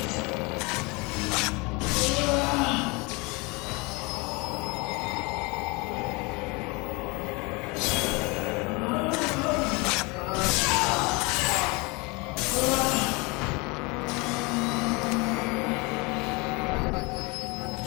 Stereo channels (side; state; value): right; quieter; 27.2 dB